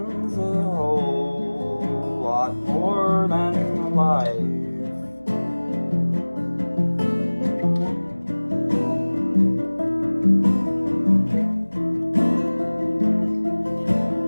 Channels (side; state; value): both; inverted; correlation -1.00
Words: a whole lot more than life.